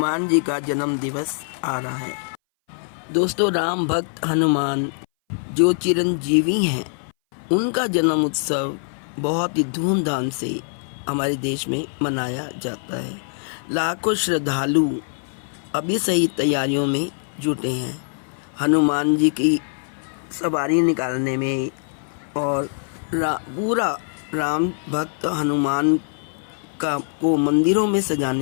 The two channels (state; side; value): silent; right; 60 dB below the other